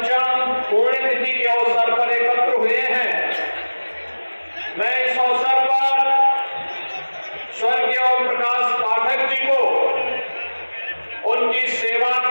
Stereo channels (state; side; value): inverted; both; correlation -1.00